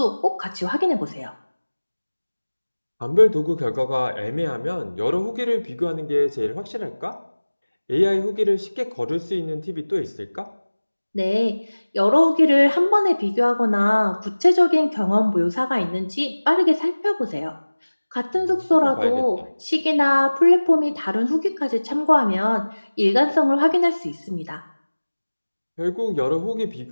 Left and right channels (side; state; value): both; inverted; correlation -1.00